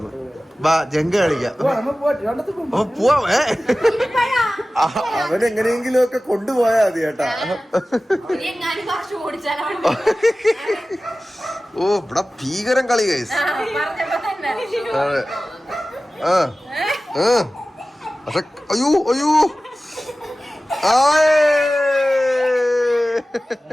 വാ, ജങ്ക കളിക്കാം. പോവാ. അവനെങ്ങനെയെങ്കിലും ഒക്കെ കൊണ്ടുപോയാ മതി കേട്ടാ. ഓ, ഇവിടെ ഭീകരം കളി ഗൈസ്. അതെ. പക്ഷെ അയ്യോ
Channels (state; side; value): normal; both; correlation 0.96